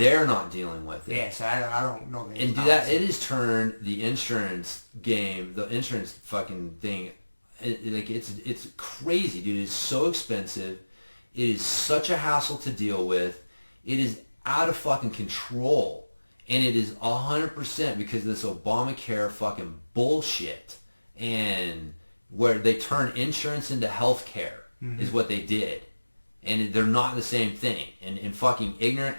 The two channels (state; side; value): inverted; both; correlation -1.00